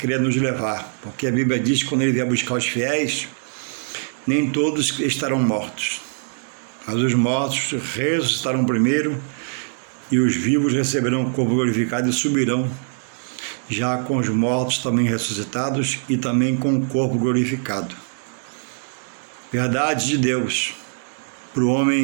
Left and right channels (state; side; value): silent; left; 64 dB below the other